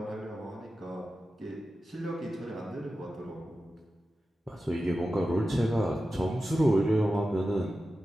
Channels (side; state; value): both; normal; correlation 0.93